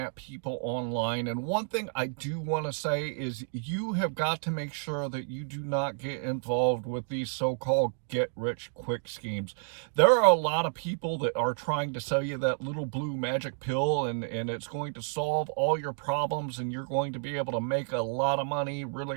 people online, and one thing I do want to say is you have got to make sure that you do not get involved with these so-called get-rich-quick schemes. There are a lot of people that are trying to sell you that little blue magic pill, and it's going to solve all your problems, and you're going to be able to make a lot of money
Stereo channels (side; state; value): left; silent; 58 dB below the other